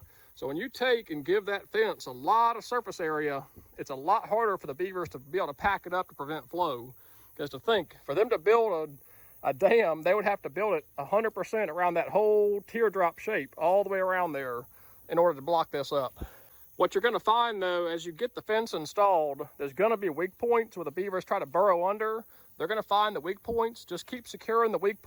So when you take and give that fence a lot of surface area, it's a lot harder for the beavers to be able to pack it up to prevent flow. Because to think, for them to build a dam, they would have to build it 100% around that whole teardrop shape, all the way around there, in order to block this up. What you're gonna find though, as you get the fence installed, there's gonna be weak points where the beavers try to burrow under. They're gonna find the weak points. Just keep securing the weak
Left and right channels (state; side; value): identical; both; correlation 1.00